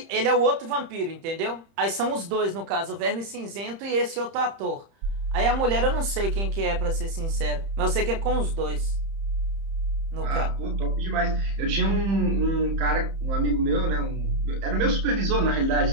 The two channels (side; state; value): left; late; 30 ms